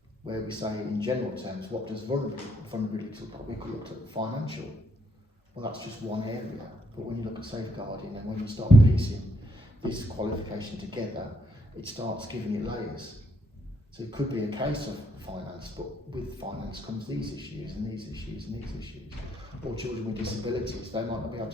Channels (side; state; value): both; normal; correlation 0.73